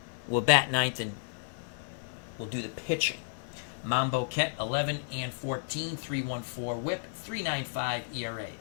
will bat 9th and will do the pitching. Mambo Ket 11-14, 3.14 whip, 3.95 ERA.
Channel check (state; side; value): silent; right; 56 dB below the other